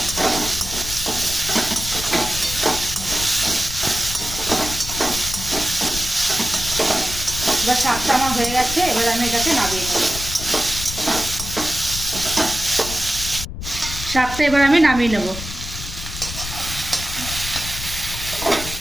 এবার শাকটা আমার হয়ে গেছে, এবার আমি এটাকে নামিয়ে নেব। শাকটা এবার আমি নামিয়ে নেব।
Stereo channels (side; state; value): left; noise; rumble, 9 dB below the sound